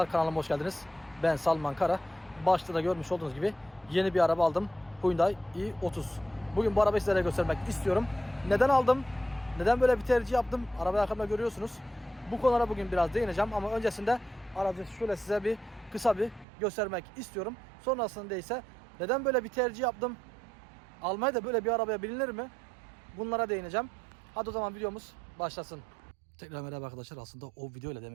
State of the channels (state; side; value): drops out; left; at 16.4 s